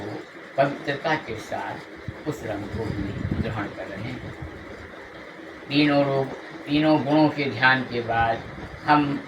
पवित्रता के साथ उस रंग को भी ग्रहण कर रहे हैं। तीनों गुणों के ध्यान के बाद हम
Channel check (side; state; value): both; identical; correlation 1.00